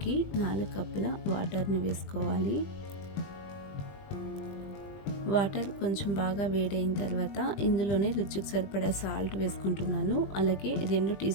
4 కప్పుల వాటర్ని వేసుకోవాలి. వాటర్ కొంచెం బాగా వేడైన తర్వాత ఇందులోనే రుచికి సరిపడా సాల్ట్ వేసుకుంటున్నాను. అలాగే 2 టీ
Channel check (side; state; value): right; late; 20 ms